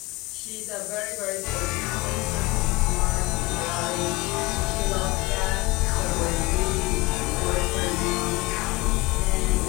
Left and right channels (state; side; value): quieter; right; 22.4 dB